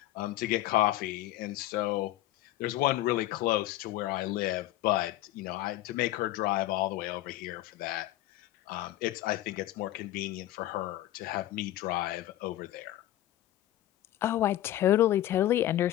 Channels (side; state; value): right; quieter; 14.4 dB